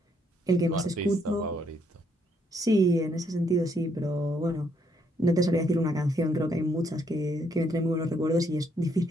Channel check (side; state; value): both; normal; correlation 0.71